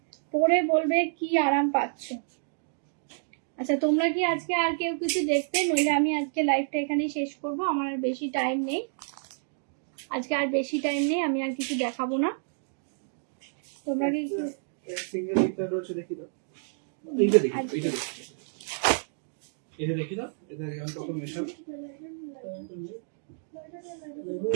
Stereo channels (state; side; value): silent; left; digital silence